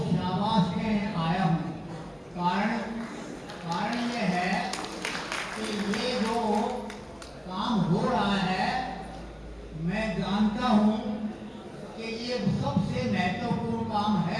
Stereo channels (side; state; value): both; identical; correlation 1.00